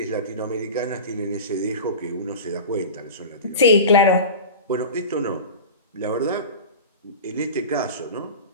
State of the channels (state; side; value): inverted; both; correlation -0.31